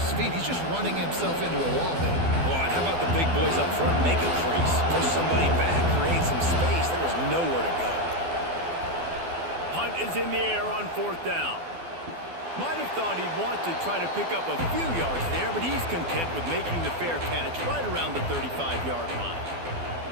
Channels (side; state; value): left; late; 12 ms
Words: feet. He's just running himself into a wall there. Boy, and how about the big boys up front? Make a crease, push somebody back, create some space. There was nowhere to go. Punt is in the air on 4th down. Might have thought he'd want to try to pick up a few yards there, but he's content with making the fair catch right around the 35-yard line.